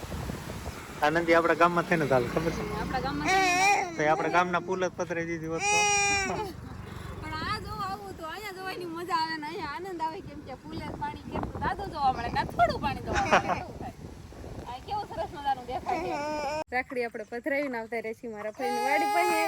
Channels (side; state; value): both; identical; correlation 1.00